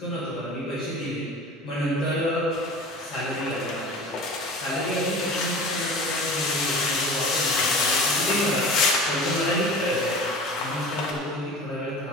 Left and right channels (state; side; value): normal; both; correlation 0.38